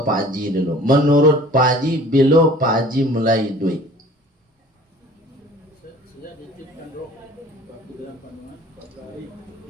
Pak Haji dulu. Menurut Pak Haji, bila Pak Haji mulai duit?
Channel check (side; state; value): both; normal; correlation 0.48